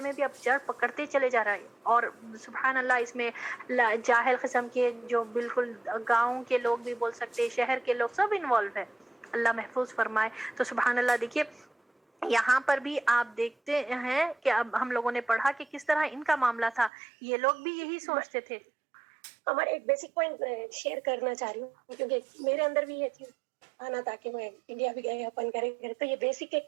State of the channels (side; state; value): left; drops out; at 16.9 s